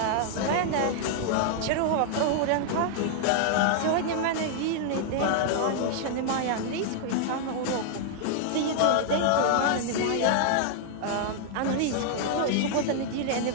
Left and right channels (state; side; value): different; both; correlation -0.01